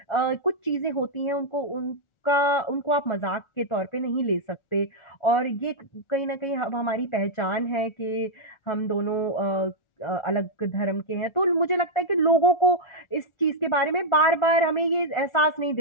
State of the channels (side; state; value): right; late; 1.4 ms